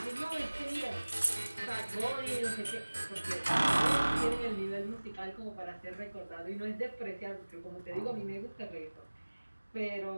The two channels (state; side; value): inverted; both; correlation -1.00